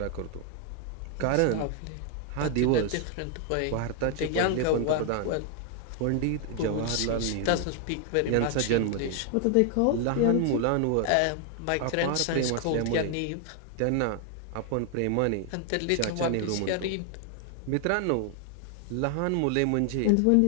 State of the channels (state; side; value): different; both; correlation 0.00